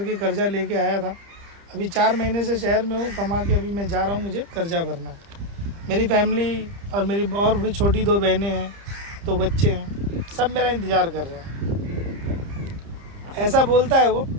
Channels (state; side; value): late; left; 30 ms